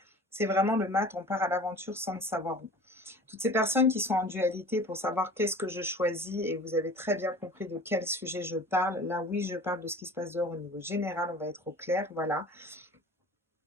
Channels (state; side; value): normal; both; correlation 0.42